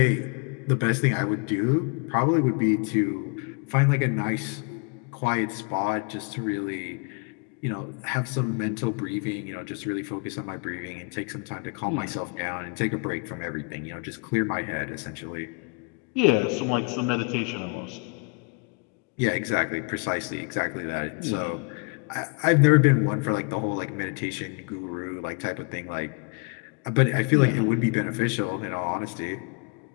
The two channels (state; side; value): quieter; right; 35.0 dB